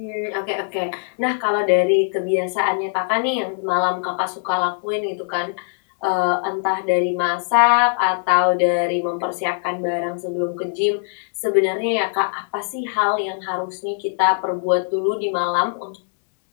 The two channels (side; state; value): right; silent; digital silence